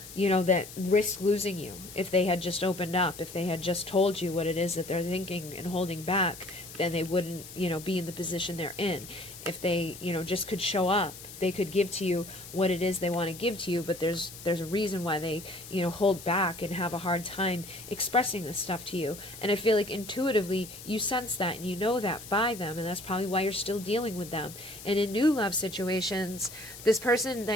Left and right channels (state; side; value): noise; left; hiss, 14 dB below the sound